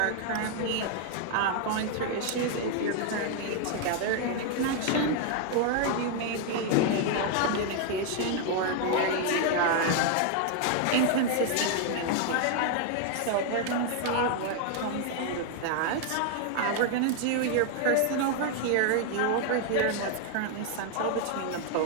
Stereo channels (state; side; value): different; both; correlation 0.00